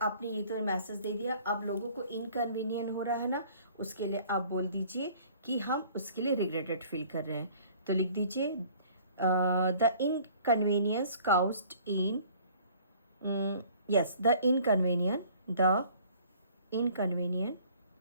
आपने ये तो मैसेज दे दिया, अब लोगों को इनकन्वीनियंट हो रहा है ना, उसके लिए आप बोल दीजिए कि हम उसके लिए रिग्रेटेड फील कर रहे हैं। तो लिख दीजिए the inconvenience caused in yes the inconvenient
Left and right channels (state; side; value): inverted; both; correlation -0.53